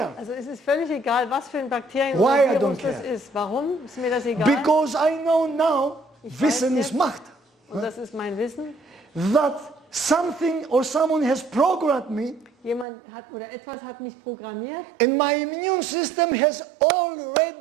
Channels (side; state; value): left; drops out; at 12.9 s